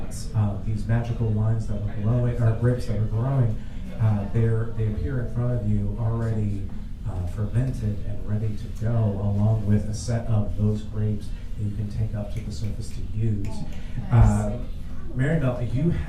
these magical wines that were glowing, or grapes that were growing. They appear in front of you already fermented and ready to go, along with a set of those grapes that you can take up to the surface to use. Maribel, you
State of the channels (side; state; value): both; identical; correlation 1.00